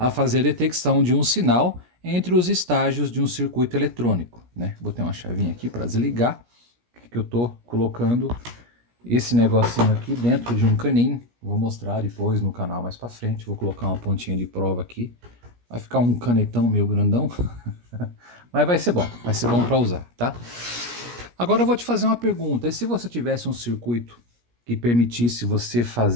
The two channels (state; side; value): late; left; 17 ms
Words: fazer a detecção de um sinal entre os estágios de um circuito eletrônico, né. Botei uma chavinha aqui para desligar, que eu tô colocando esse negocinho aqui dentro de um caninho. Vou mostrar depois no canal mais para frente, vou colocar uma pontinha de prova aqui. Vai ficar um canetão meio grandão, mas vai ser bom para usar, tá? Agora eu vou te fazer uma pergunta, e se você tivesse um circuito que permitisse você